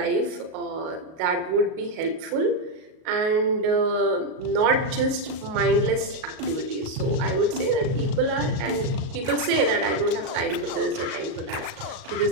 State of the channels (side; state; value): left; late; 37 ms